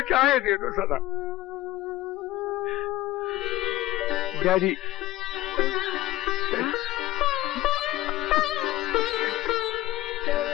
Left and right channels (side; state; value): right; quieter; 16.4 dB